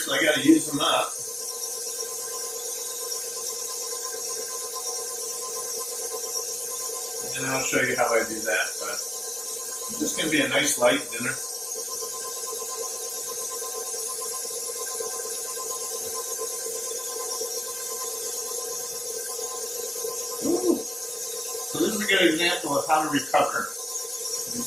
I got to use them up. And I'll show you how I do that, but it's just going to be a nice light dinner. Ooh. So this is a good example of how to recover. You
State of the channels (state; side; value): normal; both; correlation 0.96